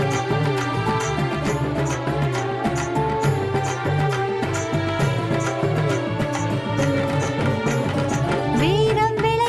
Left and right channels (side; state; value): both; identical; correlation 1.00